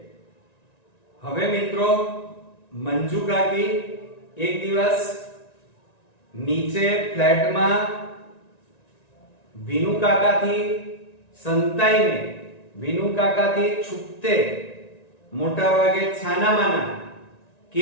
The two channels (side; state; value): right; late; 1.9 ms